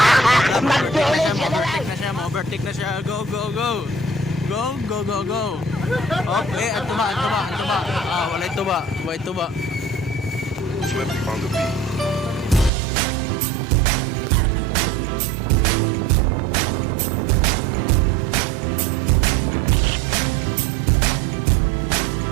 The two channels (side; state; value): left; drops out; at 12.7 s